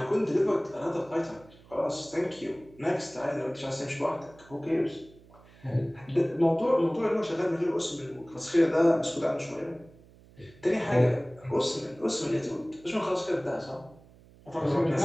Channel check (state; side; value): noise; right; hum, 25 dB below the sound